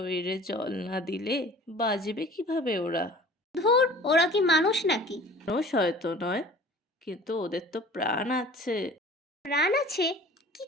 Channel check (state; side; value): normal; both; correlation 0.45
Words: জল না দিলে বাঁচবে কিভাবে ওরা? ধুর, ওরা কি মানুষ নাকি? মানুষ হয়তো নয়, কিন্তু ওদের তো প্রাণ আছে। প্রাণ আছে? কি